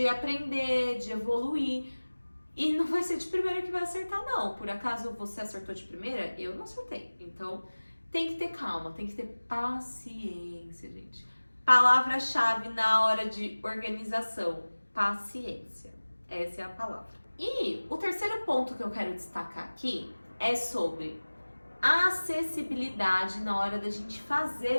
aprender, de evoluir. E não vai ser de primeira que vai acertar, não. Por acaso você acertou de primeira? Eu não acertei. Então tem que ter calma, tem que ter paciência, gente. Palavra-chave na hora de organização: paciência. Essa é a palavra. E o terceiro ponto que eu quero destacar aqui é sobre acessibilidade na hora da gente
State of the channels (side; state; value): both; inverted; correlation -1.00